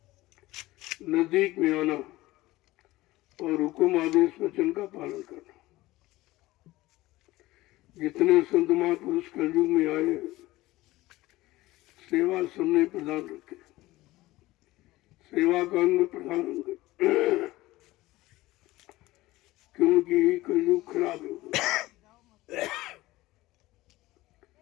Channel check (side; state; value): right; quieter; 18.2 dB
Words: नजदीक में आना और हुक्म आदेश वचन का पालन करना। जितने संत महापुरुष कलयुग में आए सेवा सबने प्रदान रखे, सेवा का अंग प्रधान अंग, क्योंकि कलयुग खराब है।